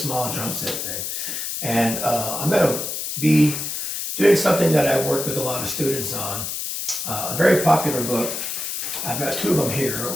drum set thing. And I'm going to be doing something that I've worked with a lot of students on. A very popular book. I've got two of them here.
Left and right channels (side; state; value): left; noise; hiss, 4 dB below the sound